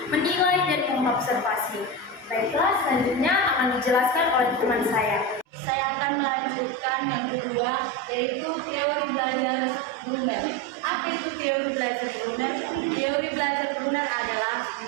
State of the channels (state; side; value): normal; both; correlation 0.21